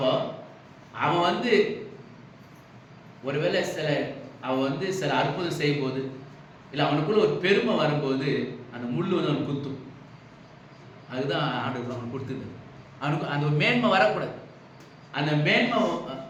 அவன் ஒருவேளை அவன் சில அற்புதம் செய்யும் போது, இல்லை அவனுக்குள்ள ஒரு பெருமை வரும்போது அந்த முள் அவனுக்கு குத்தும். அதுதான் ஆண்டவர் அவனுக்கு கொடுத்தது. அவனுக்கு அந்த ஒரு மேன்மை வரக்கூடாது. அந்த மேன்மை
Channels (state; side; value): identical; both; correlation 1.00